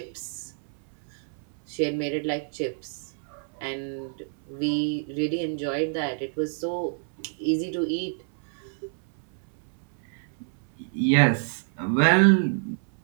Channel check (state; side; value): silent; left; 60 dB below the other